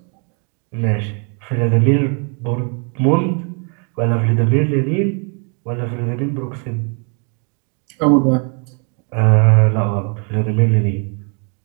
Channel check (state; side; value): quieter; left; 38.9 dB